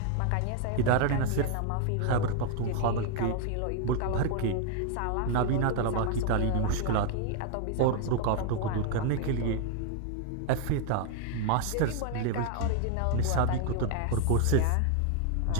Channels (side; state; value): both; different; correlation 0.00